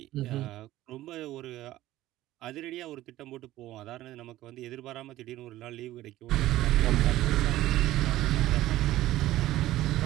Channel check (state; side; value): quieter; left; 15.3 dB